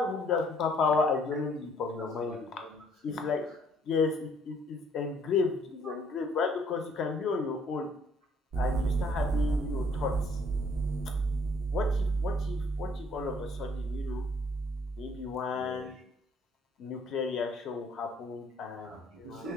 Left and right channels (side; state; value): both; normal; correlation 0.63